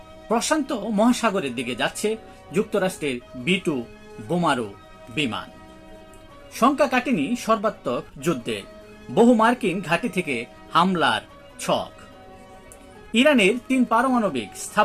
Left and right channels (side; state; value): both; identical; correlation 1.00